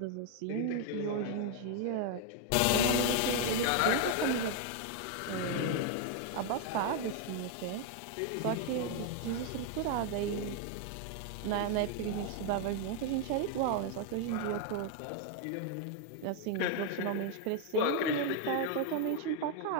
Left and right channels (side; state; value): both; different; correlation 0.01